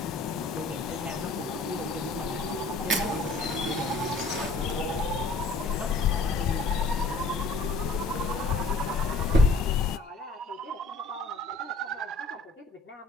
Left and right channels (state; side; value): quieter; right; 3.3 dB